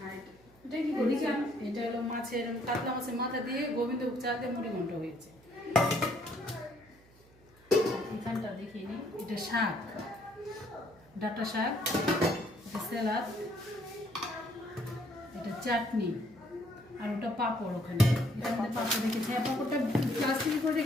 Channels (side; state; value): right; noise; hum, 27 dB below the sound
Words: আর এটা কি করেছি, এটা হলো মাছের কাতলা মাছের মাথা দিয়ে গোবিন্দভোগ চাল দিয়ে মুড়ি ঘন্ট হয়েছে। এখানটা দেখিয়ে নি, এটা শাক, ডাঁটা শাক, এটা স্যালাড, এটা চাটনি, আর ওটা পাঁপড়। ওখানে এটার মধ্যে পাঁপড় রেখেছি। হ্যাঁ, পাঁপড়টা প্লাস্টিকে করে